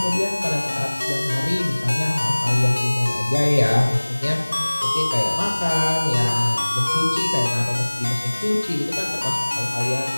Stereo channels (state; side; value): inverted; both; correlation -1.00